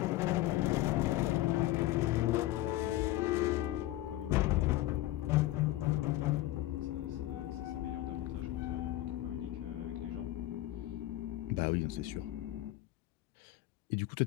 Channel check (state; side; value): quieter; right; 15.7 dB